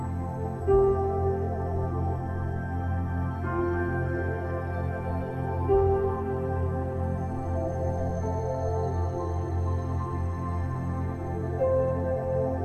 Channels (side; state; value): both; identical; correlation 1.00